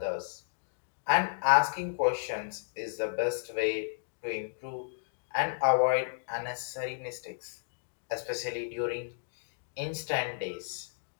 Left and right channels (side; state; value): right; silent; digital silence